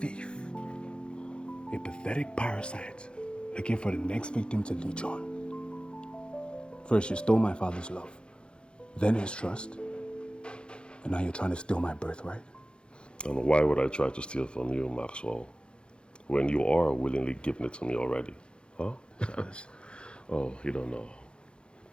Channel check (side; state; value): right; late; 0.054 ms